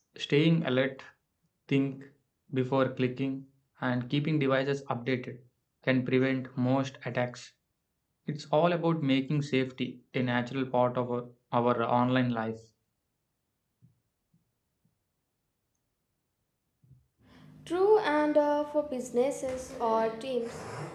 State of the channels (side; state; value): both; identical; correlation 1.00